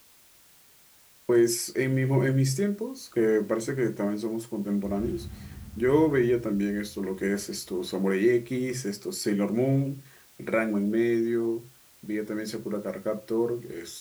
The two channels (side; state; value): both; identical; correlation 1.00